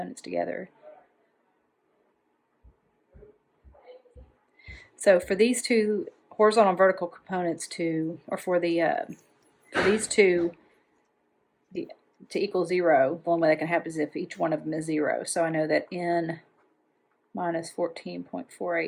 together. So for these two horizontal and vertical components for these two to equal 0, the only way that can happen is if each one of them is 0. So I know that N minus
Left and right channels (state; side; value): identical; both; correlation 1.00